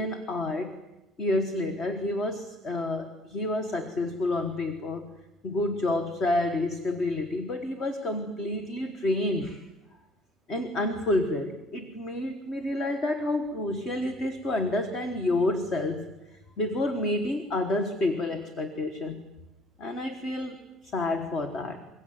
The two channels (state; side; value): normal; both; correlation 0.57